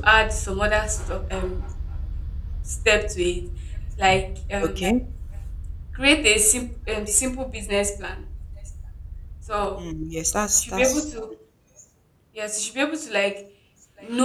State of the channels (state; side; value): identical; both; correlation 1.00